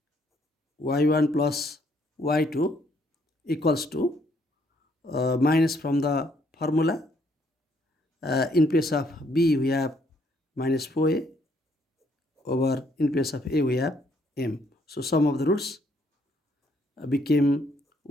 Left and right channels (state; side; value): normal; both; correlation 0.69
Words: y1 plus y2 equals to minus from the formula. In place of b we have minus 4a over, in place of a we have m. So sum of the roots became